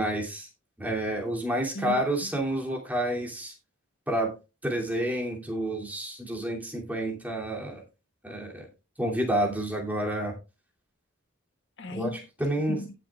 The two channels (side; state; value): both; normal; correlation 0.54